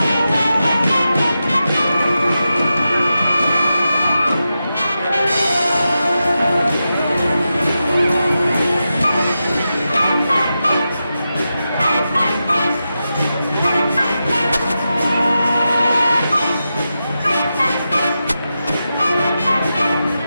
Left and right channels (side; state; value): both; inverted; correlation -0.90